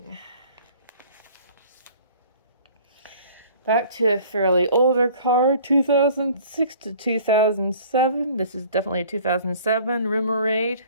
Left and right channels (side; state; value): both; inverted; correlation -0.50